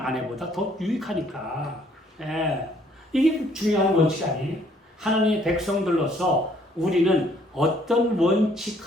더 유익하니까. 이게 중요한 원칙 아니에요? 하나님의 백성들로서 우리는 어떤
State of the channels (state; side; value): normal; both; correlation 0.64